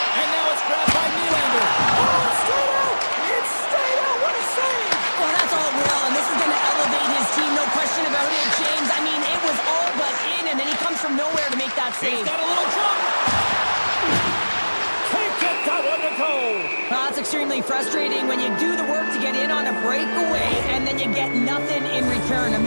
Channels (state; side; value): inverted; both; correlation -1.00